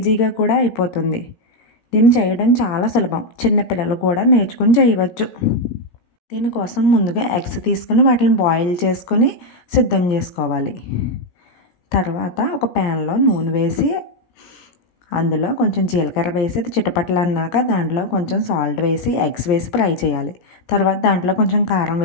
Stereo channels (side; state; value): right; late; 17 ms